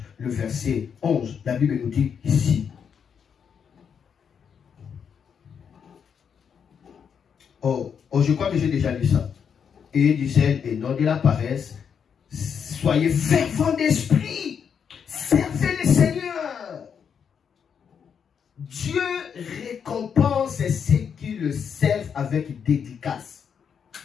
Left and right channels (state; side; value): quieter; right; 7.2 dB